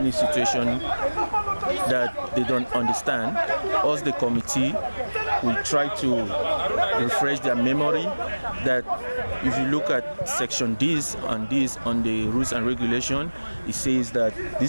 situation that they don't understand, us the committee, we try to refresh their memory that if you look at section this on the rules and regulation, it says that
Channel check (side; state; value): both; inverted; correlation -1.00